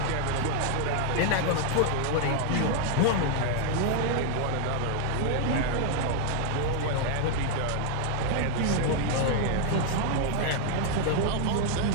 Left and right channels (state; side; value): different; both; correlation 0.00